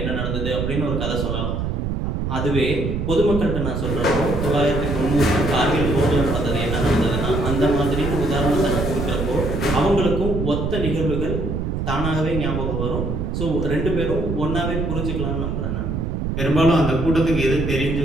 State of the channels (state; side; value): noise; right; rumble, 2 dB below the sound